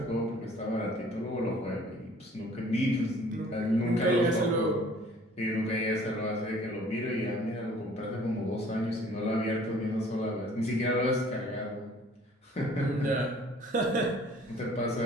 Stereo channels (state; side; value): normal; both; correlation 0.53